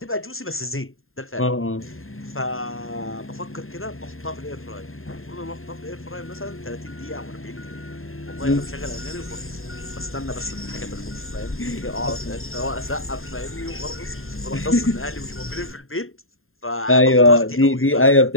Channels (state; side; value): late; right; 0.61 ms